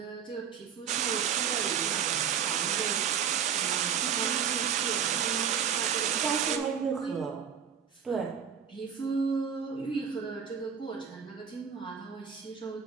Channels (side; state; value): left; quieter; 7.7 dB